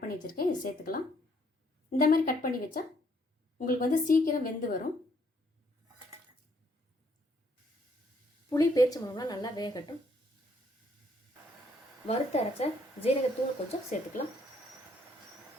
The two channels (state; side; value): normal; both; correlation 0.68